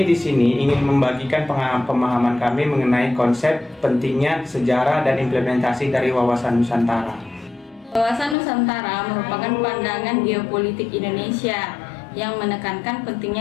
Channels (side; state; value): right; drops out; at 8.3 s